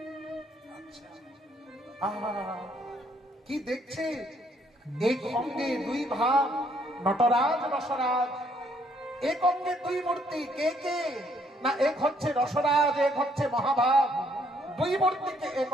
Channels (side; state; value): both; normal; correlation 0.68